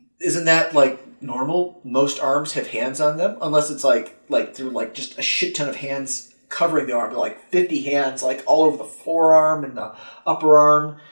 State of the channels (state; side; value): inverted; both; correlation -1.00